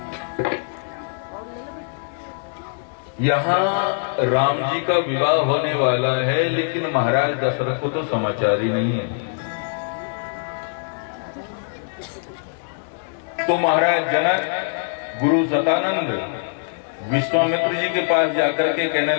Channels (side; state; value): right; silent; 59 dB below the other